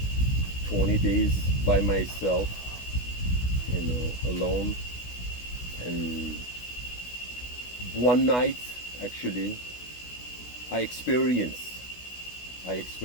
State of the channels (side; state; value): right; late; 16 ms